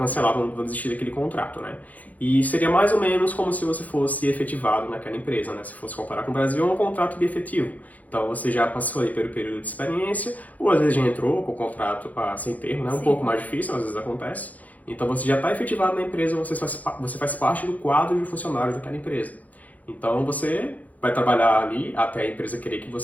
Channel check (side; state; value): right; late; 0.077 ms